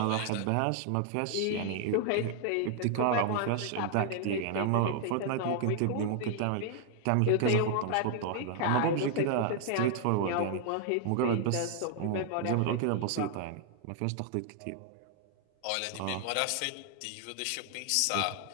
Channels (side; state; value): both; different; correlation 0.00